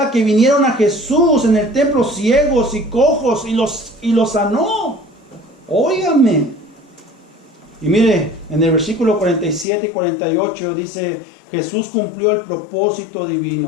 que vinieron a Jesús en el templo ciegos y cojos y los sanó. Óigame. Y mire, en el versículo 47 y 48 dice, Jesús cumplió el propósito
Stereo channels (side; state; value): right; drops out; at 9.7 s